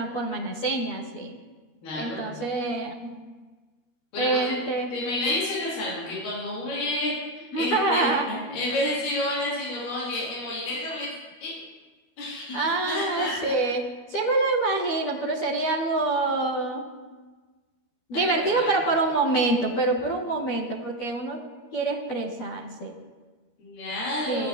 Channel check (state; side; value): late; right; 13 ms